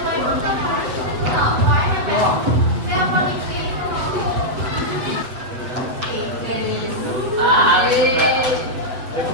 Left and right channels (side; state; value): left; late; 8.3 ms